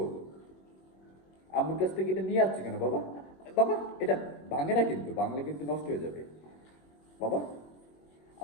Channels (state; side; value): late; right; 21 ms